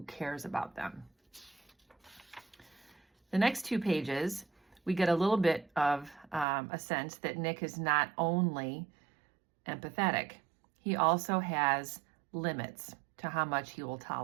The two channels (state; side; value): drops out; left; at 6.5 s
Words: cares about them. The next two pages, we get a little bit of a sense that Nick is not only empathetic, he also has limits to how much he will